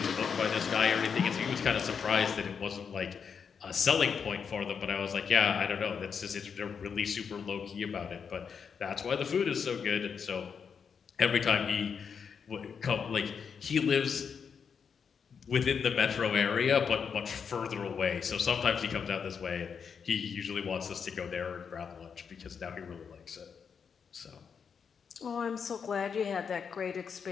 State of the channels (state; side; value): quieter; right; 6.5 dB